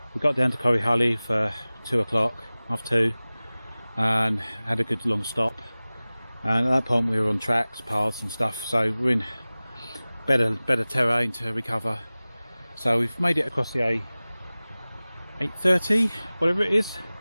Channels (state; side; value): inverted; both; correlation -0.98